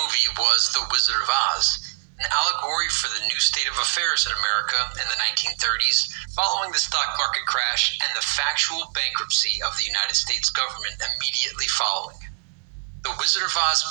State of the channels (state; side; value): silent; left; 63 dB below the other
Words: movie was The Wizard of Oz, an allegory for the new state of affairs in America in the 1930s, following the stock market crash and the factual bankruptcy of the United States government immediately following. The Wizard of Oz